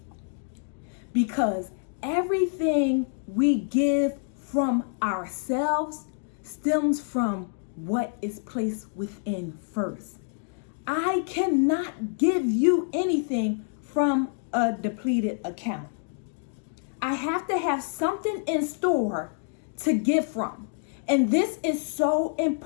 Because everything we give from ourselves stems from what is placed within first. I cannot give you anything from a depleted account. I have to have something in store to give from. And this is so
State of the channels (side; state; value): right; silent; digital silence